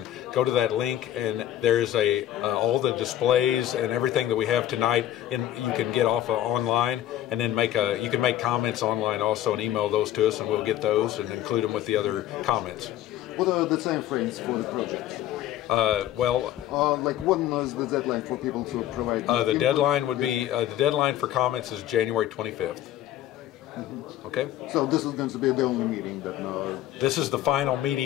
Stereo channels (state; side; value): quieter; right; 12.7 dB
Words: go to that link, and there's all the displays and everything that we have tonight you can get off online, and then you can make comments online also and email those to us, and we'll get those and include them with the other comments. What are the time frames for the project? Like when is the deadline for people to provide? The deadline would be the deadline for comments is January 25th. Mm-hmm. Okay? So this is going to be the only meeting that This is the final